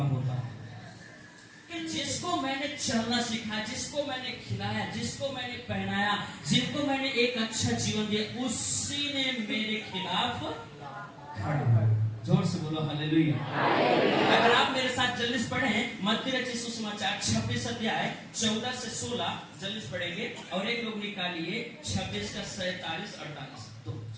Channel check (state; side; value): identical; both; correlation 1.00